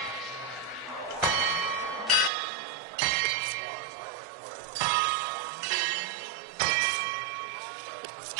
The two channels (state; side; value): drops out; left; at 2.3 s